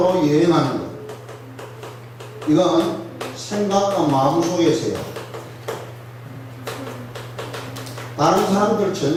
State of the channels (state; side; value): identical; both; correlation 1.00